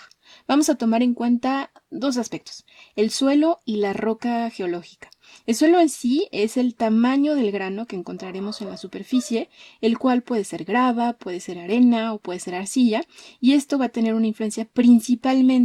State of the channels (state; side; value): identical; both; correlation 1.00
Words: Vamos a tomar en cuenta 2 aspectos: el suelo y la roca geológica. El suelo en sí es el tamaño del grano que encontraremos en la superficie, el cual puede ser grava, puede ser arena o puede ser arcilla, y esto va a tener una influencia